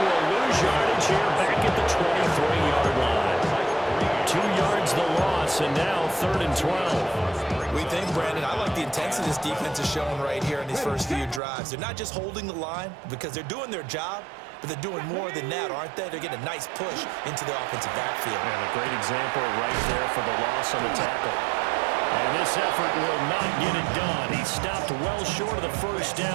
will lose yardage here back at the 23-yard line. 2 yards the loss, and now 3rd and 12. We think, Brandon, I like the intensity this defense is showing right here in these first few drives. They're not just holding the line because they're doing their job, but they're doing more than that, aren't they? They're getting a nice push into the offensive backfield. And a great example right there for the loss on the tackle. And this effort will not get it done. He stopped well short of the first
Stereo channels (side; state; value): left; drops out; at 11.4 s